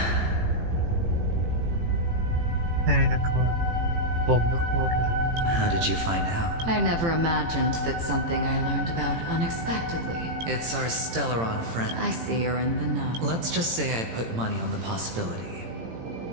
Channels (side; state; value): left; late; 18 ms